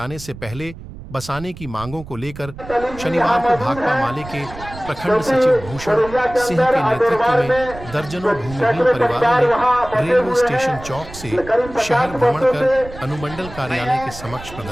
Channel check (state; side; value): noise; right; rumble, 15 dB below the sound